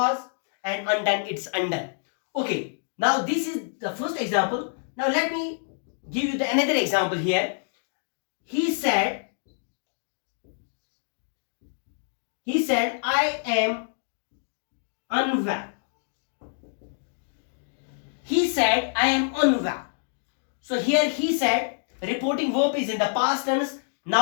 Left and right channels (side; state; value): right; silent; digital silence